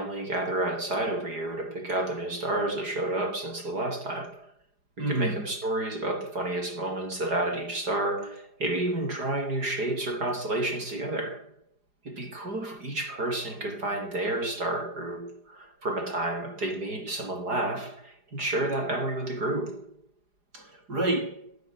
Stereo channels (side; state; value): left; late; 4.9 ms